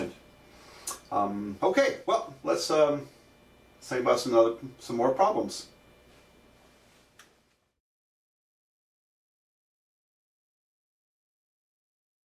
Okay, well, let's think about some more problems.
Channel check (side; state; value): both; identical; correlation 1.00